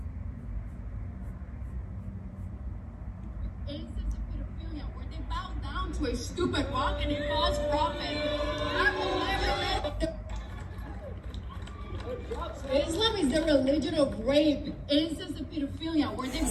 To a stupid rock and a false prophet. Islam is the religion of rape, incest, and pedophilia, where they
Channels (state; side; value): identical; both; correlation 1.00